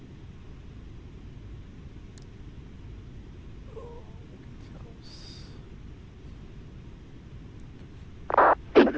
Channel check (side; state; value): both; identical; correlation 1.00